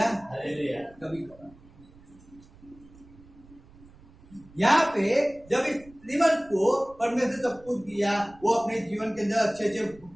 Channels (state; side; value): noise; right; rumble, 24 dB below the sound